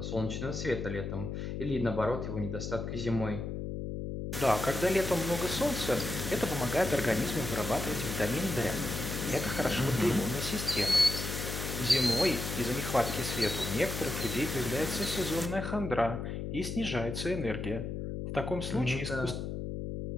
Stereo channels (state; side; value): noise; left; hum, 4 dB below the sound